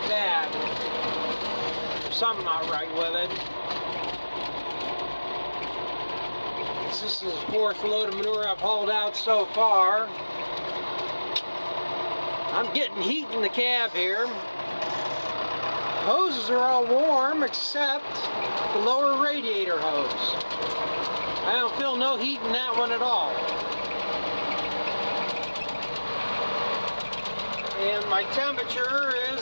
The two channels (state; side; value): inverted; both; correlation -1.00